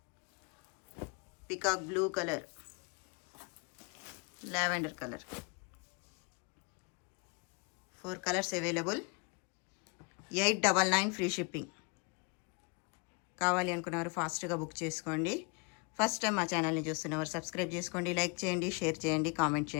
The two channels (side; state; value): right; quieter; 32.2 dB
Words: peacock blue colour, lavender colour. 4 colours available. 899 free shipping. కావాలి అనుకున్నవారు ఫాస్ట్గా book చేసుకోండి. First time మా ఛానల్ని చూస్తున్నవారు సబ్స్క్రైబ్ చేసుకోండి, లైక్ చేయండి, షేర్ చేయండి, కామెంట్